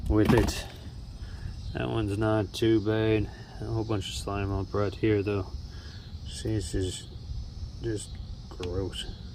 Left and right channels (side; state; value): both; identical; correlation 1.00